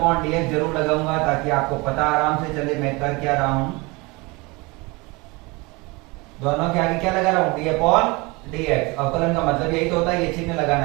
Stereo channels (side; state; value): left; quieter; 25.4 dB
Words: डी एक्स जरूर लगाऊंगा ताकि आपको पता आराम से चले मैं कर क्या रहा हूं। दोनों के आगे क्या लगा रहा हूं, डी अपॉन डी एक्स। अवकलन का मतलब यही तो होता है, ये चिन्ह